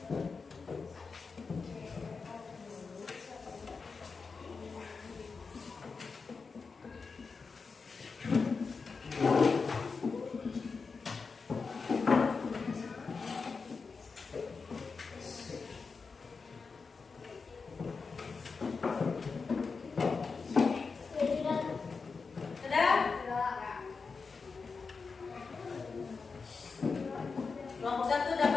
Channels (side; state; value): right; quieter; 4.8 dB